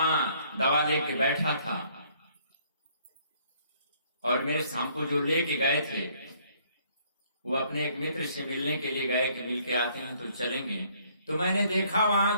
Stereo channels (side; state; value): both; inverted; correlation -0.63